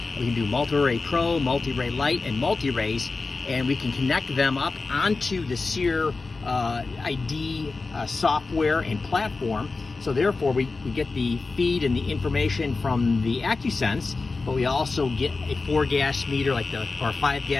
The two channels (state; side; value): quieter; right; 3.9 dB